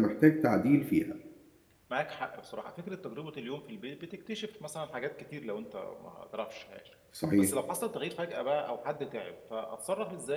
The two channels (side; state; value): both; identical; correlation 1.00